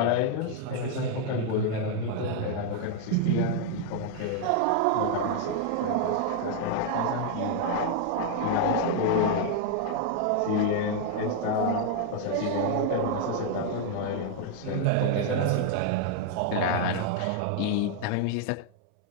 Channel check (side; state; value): both; different; correlation 0.00